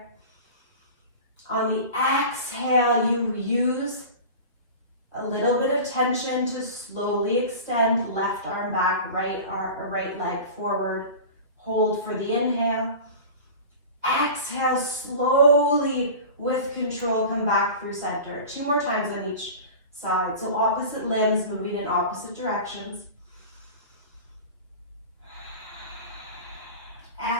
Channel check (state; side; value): inverted; both; correlation -0.34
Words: On the exhale, you use a little bit of tension to slowly extend left arm back, right leg forward. Hold for the inhale. Exhale, slowly with control, come back through center. 2 more times on each side. So opposite limbs moving in opposite directions.